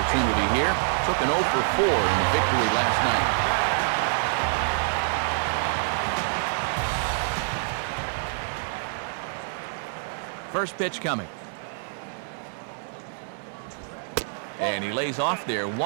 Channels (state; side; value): silent; left; 61 dB below the other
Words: here. Took an 0 for 4 in the victory last night. First pitch coming. And he lays off there